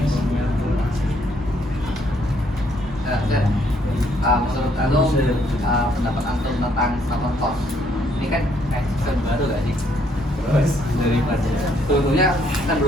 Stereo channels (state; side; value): normal; both; correlation 0.69